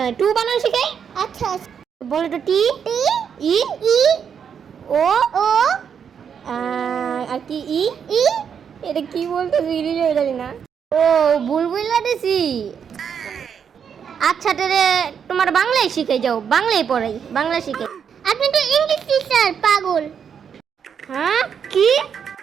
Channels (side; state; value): left; quieter; 7.4 dB